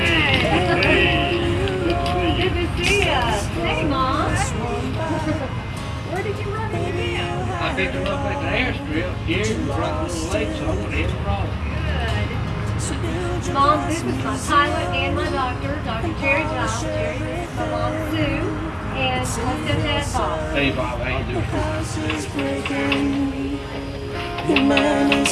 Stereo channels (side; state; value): both; identical; correlation 1.00